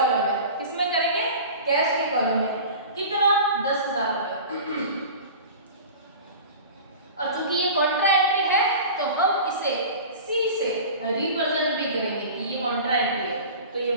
में। किसमें करेंगे, कैश के कॉलम में। कितना, 10,000 रुपए। और चूंकि ये कॉन्ट्रा एंट्री है तो हम इसे सी से रिप्रेजेंट भी करेंगे कि ये कॉन्ट्रा एंट्री है, तो ये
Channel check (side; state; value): both; inverted; correlation -0.37